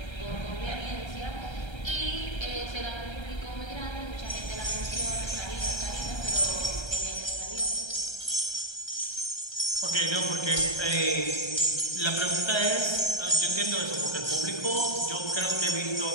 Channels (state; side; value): late; right; 1.3 ms